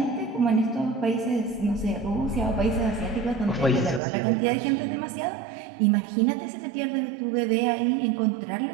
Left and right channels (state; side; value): drops out; left; at 4.0 s